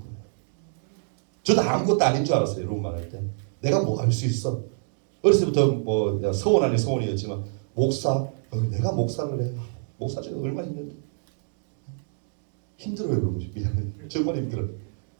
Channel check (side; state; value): left; silent; digital silence